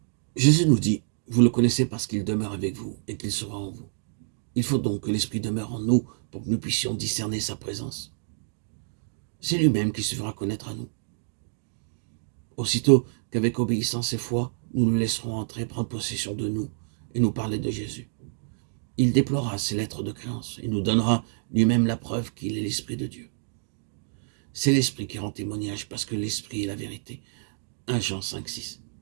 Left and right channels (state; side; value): silent; left; digital silence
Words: Jésus nous dit, vous le connaissez parce qu'il demeure avec vous et qu'il sera en vous. Il faut donc que l'Esprit demeure en nous pour que nous puissions discerner sa présence. C'est lui-même qui se fera connaître à nous. Aussitôt qu'avec obéissance et foi, nous le laisserons entrer, prendre possession de nous et nous parler de Jésus. Il déplorera ses lettres de créance et nous donnera lui-même la preuve qu'il est l'Esprit de Dieu. C'est l'Esprit qui rend témoignage parce que l'Esprit est la vérité. 1 Jean 5, 6.